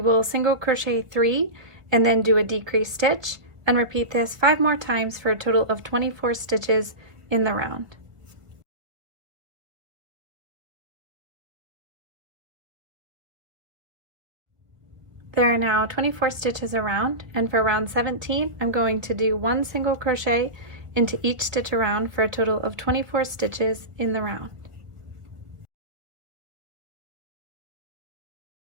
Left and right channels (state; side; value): late; left; 1.6 ms